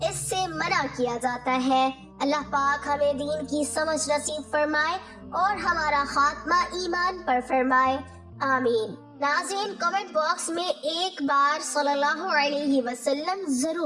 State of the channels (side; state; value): both; identical; correlation 1.00